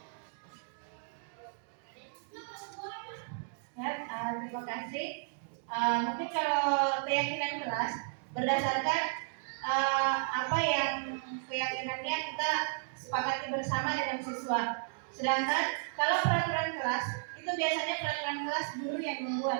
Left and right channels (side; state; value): left; silent; digital silence